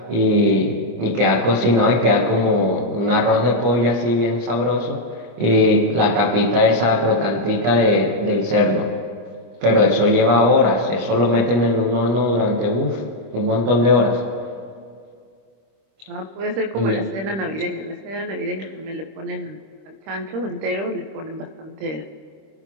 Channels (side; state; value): left; late; 25 ms